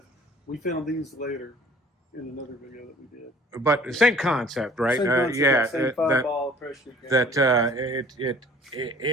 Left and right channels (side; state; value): both; normal; correlation 0.51